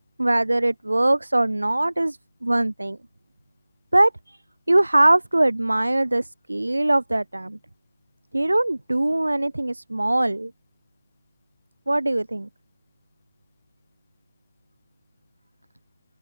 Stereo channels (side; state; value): both; inverted; correlation -1.00